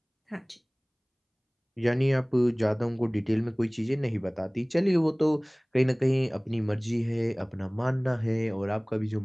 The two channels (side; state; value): both; identical; correlation 1.00